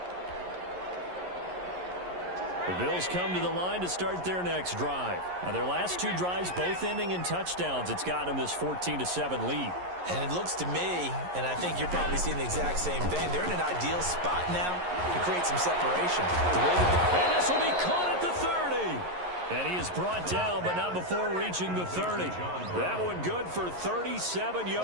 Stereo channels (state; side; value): late; left; 11 ms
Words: The Bills come to the line to start their next drive. Now, their last 2 drives, both ending in touchdowns. It's gotten them this 14-7 lead. And it looks to me, and I think you're probably seeing the exact same thing, they're in an ideal spot now to create some separation. And this will be caught at the 30. And he is brought down, but not before reaching the 30. That one good for 37